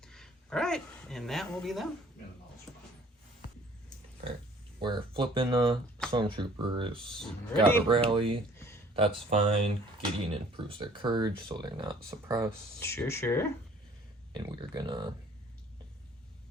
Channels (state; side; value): normal; both; correlation 0.55